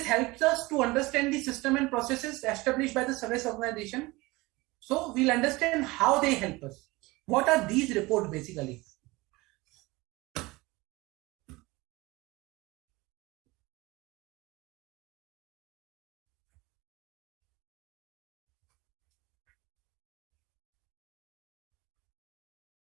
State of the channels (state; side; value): quieter; left; 22.2 dB